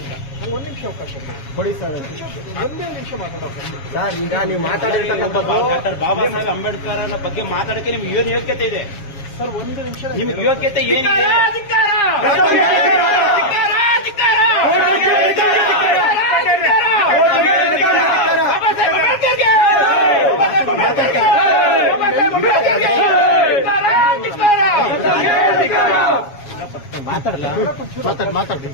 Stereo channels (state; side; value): late; right; 7.3 ms